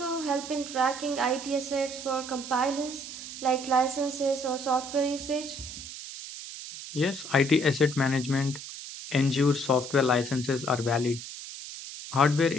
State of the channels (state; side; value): noise; right; hiss, 11 dB below the sound